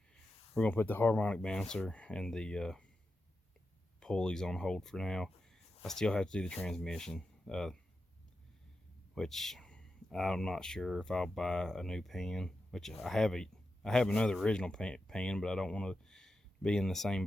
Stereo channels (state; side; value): normal; both; correlation 0.89